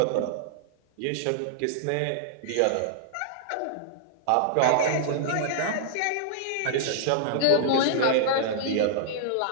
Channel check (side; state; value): both; different; correlation -0.01